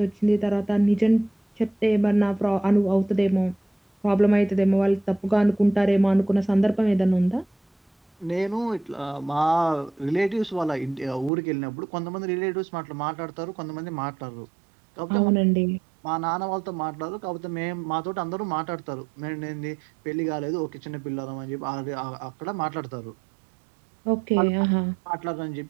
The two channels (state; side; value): drops out; left; at 11.3 s